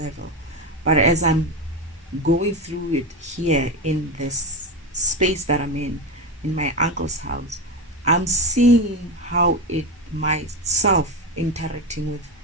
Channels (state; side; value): normal; both; correlation 0.16